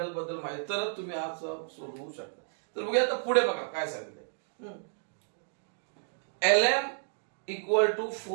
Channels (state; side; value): silent; left; digital silence